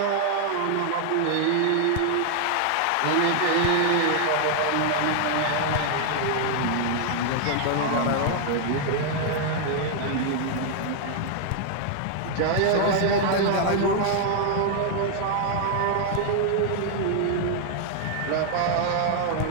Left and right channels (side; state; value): both; different; correlation 0.00